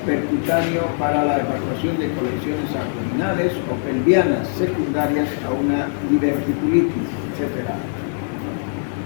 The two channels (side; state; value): right; silent; digital silence